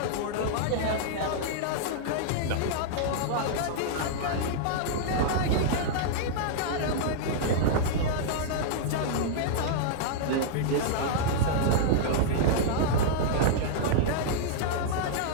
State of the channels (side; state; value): both; different; correlation -0.02